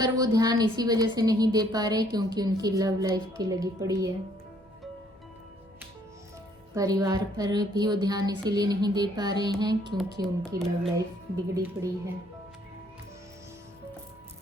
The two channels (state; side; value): normal; both; correlation 0.64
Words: वो ध्यान इसी वजह से नहीं दे पा रहे क्योंकि उनकी लव लाइफ की लगी पड़ी है। परिवार पर भी वो ध्यान इसीलिए नहीं दे पा रहे हैं क्योंकि उनकी लव लाइफ बिगड़ी पड़ी है।